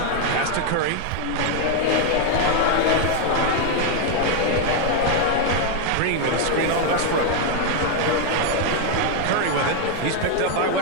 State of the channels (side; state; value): both; different; correlation 0.00